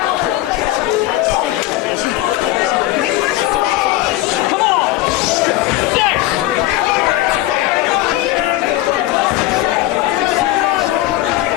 an opponent scheduled here tonight for the Combat Zone, but he is signed to wrestle this evening. And of course, I'm sorry? Of course, John Dahmer suffered a very serious shoulder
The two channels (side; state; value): right; quieter; 16.2 dB